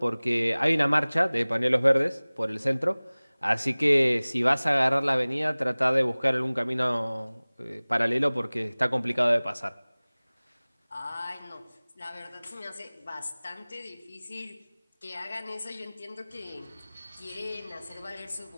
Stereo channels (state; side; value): inverted; both; correlation -1.00